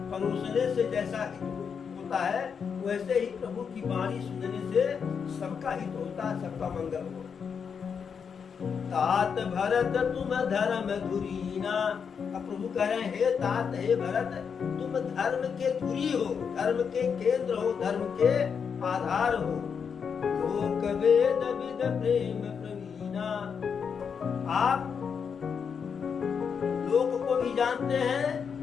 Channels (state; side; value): quieter; right; 6.6 dB